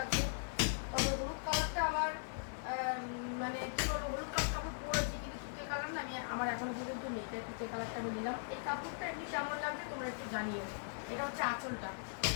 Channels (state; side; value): silent; right; digital silence